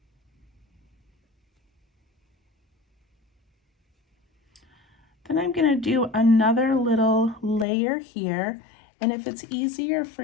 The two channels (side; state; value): right; drops out; at 7.7 s